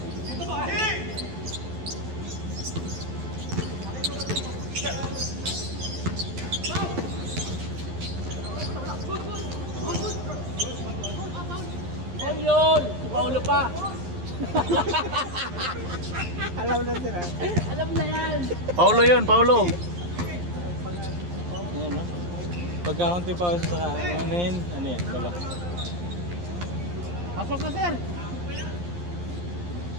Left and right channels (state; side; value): late; left; 11 ms